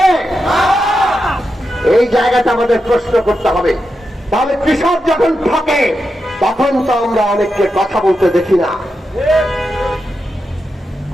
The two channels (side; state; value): both; normal; correlation 0.88